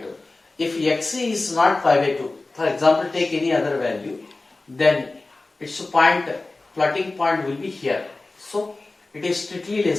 If x is not pi by 2, for example, take any other value, then its point, floating point will be here. So it is strictly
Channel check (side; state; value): right; quieter; 3.2 dB